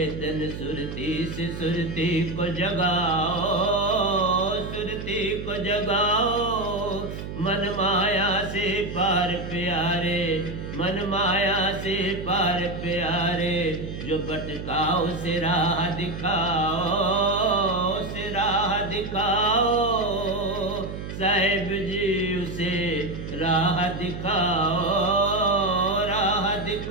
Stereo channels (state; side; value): noise; right; hum, 8 dB below the sound